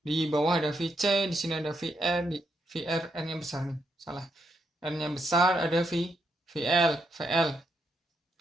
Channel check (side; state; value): both; normal; correlation 0.80